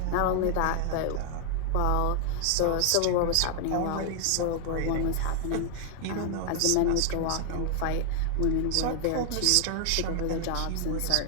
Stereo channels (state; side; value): different; both; correlation 0.00